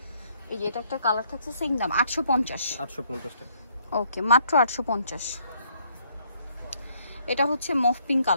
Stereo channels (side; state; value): both; inverted; correlation -0.67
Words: এই যে এটা একটা কালার থাকছে, সেম দাম 850 টাকা। ওকে, মাত্র 850। এটা হচ্ছে মফ পিঙ্ক